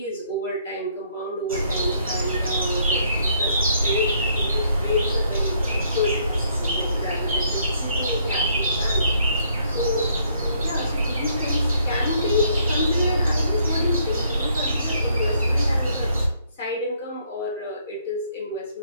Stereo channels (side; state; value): both; inverted; correlation -0.68